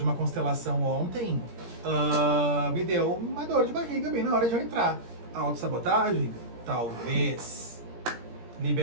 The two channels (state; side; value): late; left; 17 ms